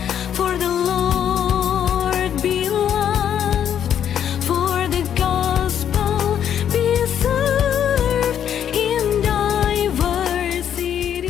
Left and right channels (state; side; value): quieter; right; 9.3 dB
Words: for the Lord be loved, for the gospel be served in diversity.